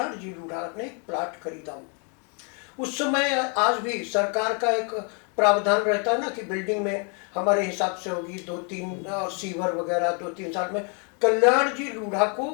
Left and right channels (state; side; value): quieter; right; 37.9 dB